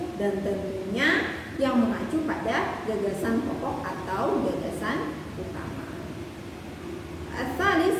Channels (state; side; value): identical; both; correlation 1.00